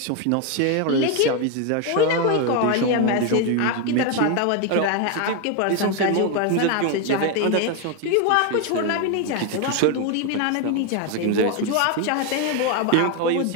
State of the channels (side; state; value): both; different; correlation 0.01